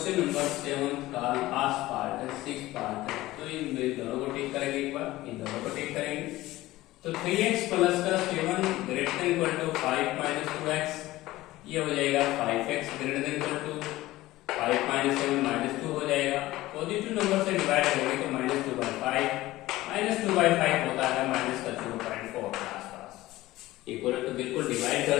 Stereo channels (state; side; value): quieter; right; 17.3 dB